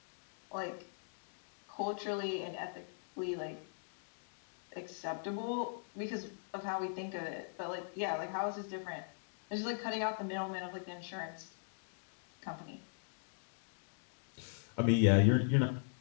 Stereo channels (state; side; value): silent; right; digital silence